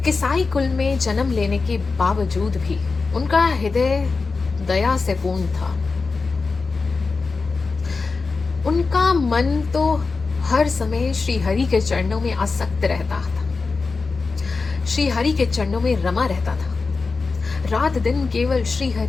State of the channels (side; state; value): right; quieter; 4.3 dB